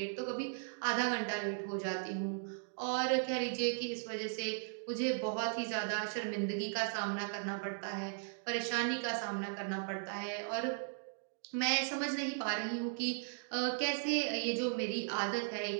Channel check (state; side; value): silent; left; digital silence